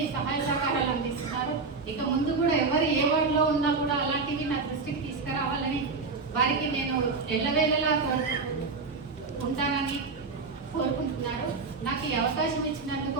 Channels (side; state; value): left; quieter; 4.4 dB